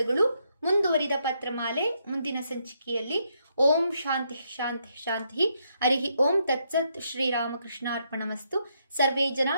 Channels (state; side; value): inverted; both; correlation -0.76